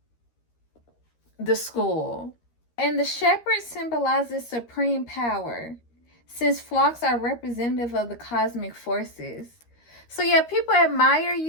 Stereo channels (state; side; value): late; right; 13 ms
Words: the school. And the shepherd symbolizes supreme power, since flocks are representative of the cosmic forces. So, yeah, people admire